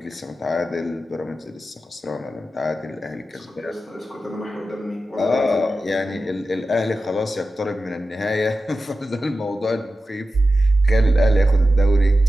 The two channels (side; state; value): both; normal; correlation 0.93